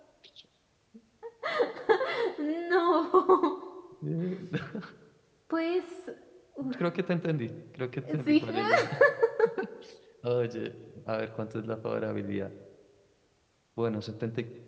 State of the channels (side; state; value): both; identical; correlation 1.00